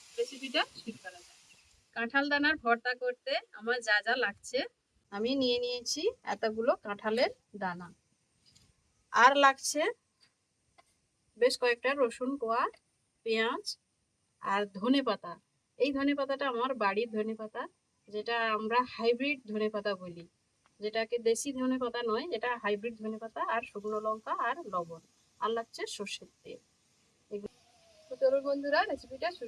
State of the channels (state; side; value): identical; both; correlation 1.00